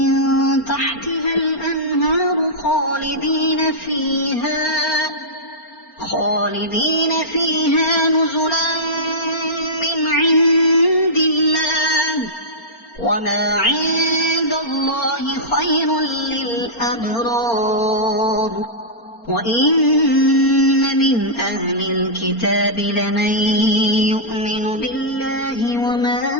تحتها الأنهار خالدين فيها نزلا من عند الله وما عند الله خير للأبرار وإن من أهل الكتاب لمن يؤمن بالله وما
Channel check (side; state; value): right; late; 4.3 ms